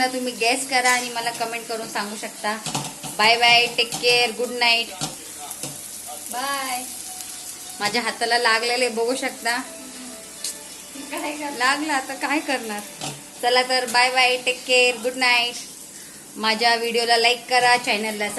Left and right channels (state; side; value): identical; both; correlation 1.00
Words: तुम्ही गेस करा आणि मला कमेंट करून सांगू शकता. Bye bye, take care, good night. Bye. माझ्या हाताला लागलेले बघू शकता. लागला, आता काय करणार. चला तर bye bye, take care, good night. माझ्या व्हिडिओला लाईक करा, चॅनलला